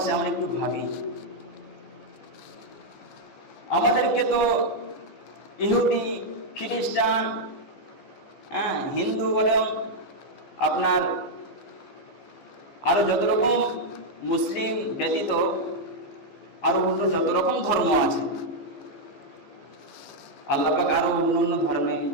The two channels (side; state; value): right; late; 15 ms